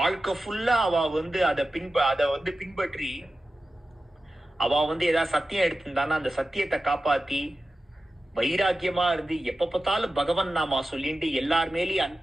ஃபுல்லா அவ வந்து அத வந்து பின்பற்றி அவ வந்து ஏதாவது சத்தியம் எடுத்திருந்தானா அந்த சத்தியத்தை காப்பாத்தி வைராக்கியமா இருந்து எப்ப பார்த்தாலும் பகவன் நாமா சொல்லிட்டு எல்லார் மேலேயும்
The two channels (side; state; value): both; normal; correlation 0.93